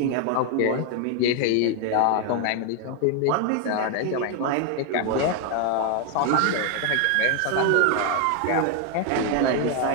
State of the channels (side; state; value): both; different; correlation 0.01